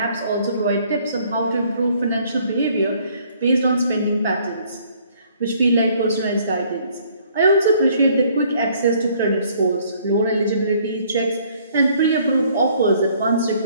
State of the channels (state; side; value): inverted; both; correlation -0.61